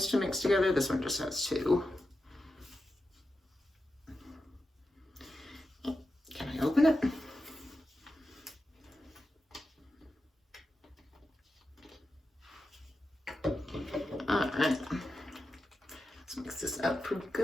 to mix together. This one just has 2. Can I open it? All right. Let's mix this up pretty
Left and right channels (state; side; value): normal; both; correlation 0.90